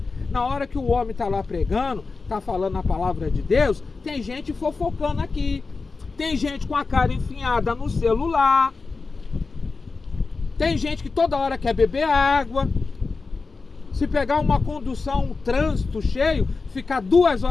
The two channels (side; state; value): right; quieter; 4.2 dB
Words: Na hora que o homem está lá pregando, está falando a palavra de Deus, tem gente fofocando aqui. Tem gente com a cara enfiada no celular. Tem gente que toda hora quer beber água. Se pegar uma condução, um trânsito cheio, ficar 2